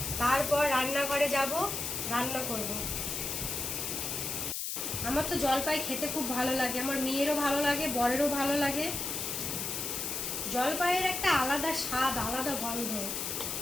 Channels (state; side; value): noise; left; hiss, 3 dB below the sound